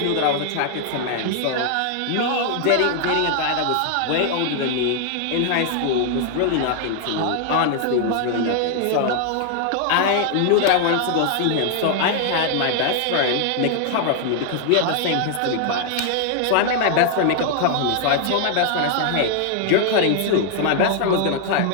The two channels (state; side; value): different; both; correlation 0.00